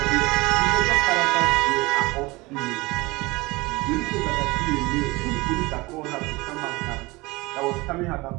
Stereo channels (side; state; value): left; quieter; 22.8 dB